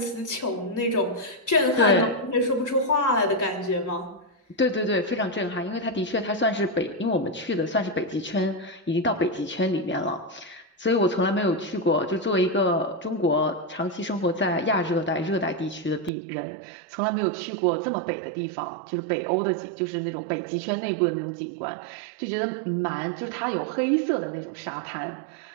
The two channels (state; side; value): drops out; left; at 16.1 s